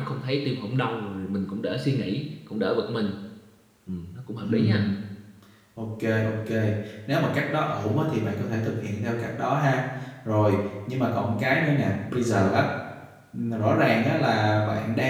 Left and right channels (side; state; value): both; identical; correlation 1.00